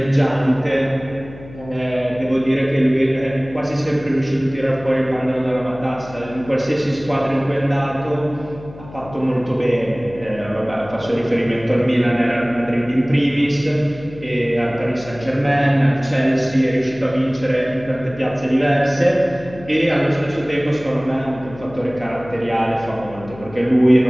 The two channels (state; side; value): noise; left; hum, 17 dB below the sound